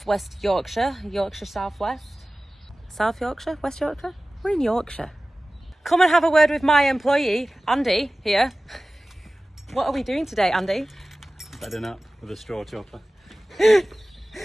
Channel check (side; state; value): both; normal; correlation 0.97